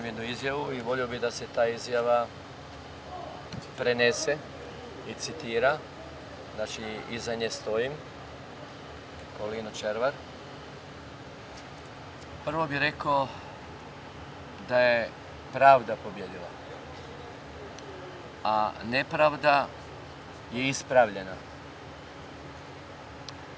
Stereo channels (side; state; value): both; identical; correlation 1.00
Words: jednu izjavu i volio bi da se ta izjava prenese i citira. Znači, iza nje stojim, kao Lino Červar. Prvo bih rekao da je pravda pobjedila, a nepravda je ispravljena.